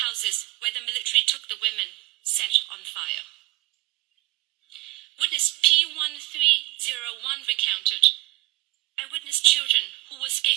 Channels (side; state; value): left; quieter; 20.2 dB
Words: houses where the military took the women set on fire. Witness P1301 recounted, I witnessed children who were